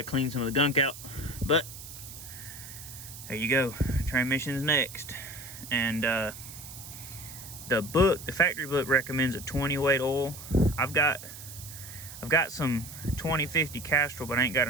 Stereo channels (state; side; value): noise; right; hiss, 13 dB below the sound